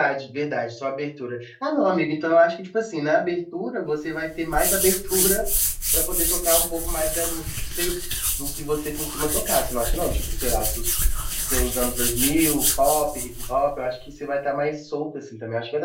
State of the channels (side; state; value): both; identical; correlation 1.00